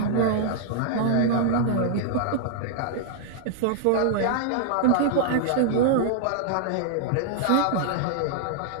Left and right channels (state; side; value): different; both; correlation -0.01